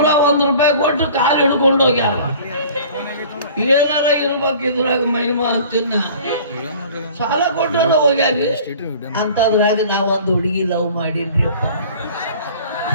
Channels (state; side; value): inverted; both; correlation -0.46